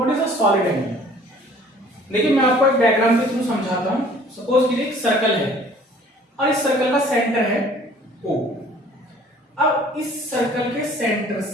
is a solid angle? देखिए मैं आपको एक डायग्राम के थ्रू समझाता हूँ। सपोज कीजिए एक सर्कल है और इस सर्कल का सेंटर है O। अब इस सर्कल के सेंटर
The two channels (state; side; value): normal; both; correlation 0.53